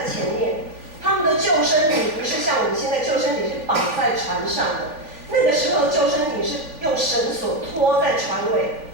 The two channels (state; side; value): late; left; 3.4 ms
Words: 前面，他们的救生艇不是像我们现在救生艇是绑在船上的，那个时候的救生艇是用绳索拖在船尾，